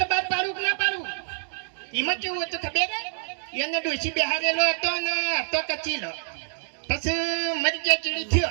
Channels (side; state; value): left; silent; digital silence